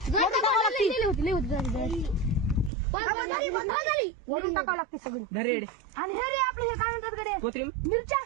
वरून टाकावं लागते सगळी धरेड आणि हे रे आपलं हे काय म्हणतात कडे कोथिंबीर मिरच्या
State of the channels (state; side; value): drops out; left; at 2.7 s